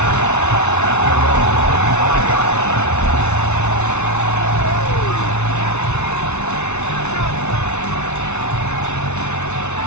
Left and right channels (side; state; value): right; late; 0.81 ms